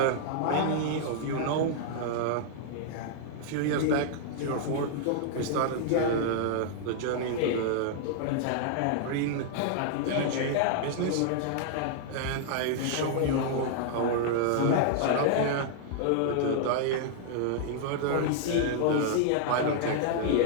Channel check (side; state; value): both; different; correlation -0.01